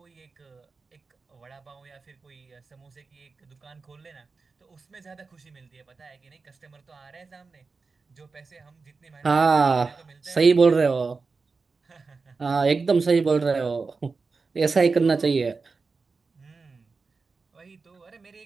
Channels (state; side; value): quieter; left; 4.4 dB